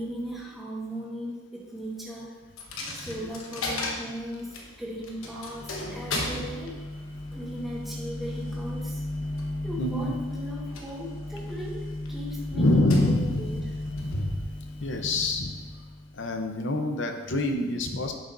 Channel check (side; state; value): both; normal; correlation 0.64